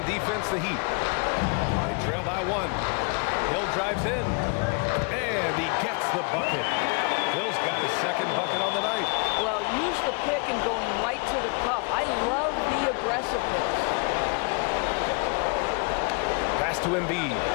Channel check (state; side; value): quieter; right; 35.2 dB